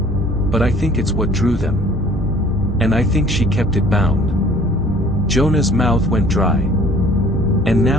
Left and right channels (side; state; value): both; normal; correlation 0.53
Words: But I think it's what drew them. And I think she kept it bound." Jonah's mouth went dry. "And